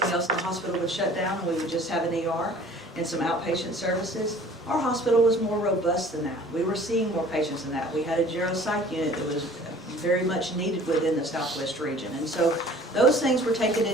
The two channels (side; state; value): both; normal; correlation 0.49